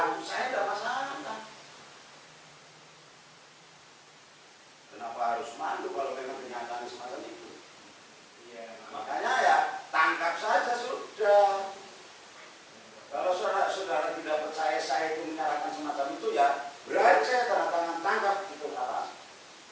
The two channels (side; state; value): both; identical; correlation 1.00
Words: saya tidak masalah. Kenapa harus malu kalau memang kenyataan semacam itu? Ya, makanya ya tangkap saja sudah. Kalau saudara tidak percaya saya itu menyalahkan semacam itu, ya beraja tanda tangan tangkap itu apa?